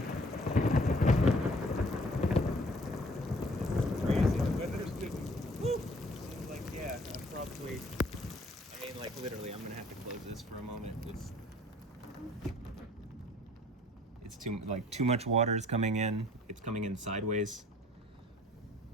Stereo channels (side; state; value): both; normal; correlation 0.56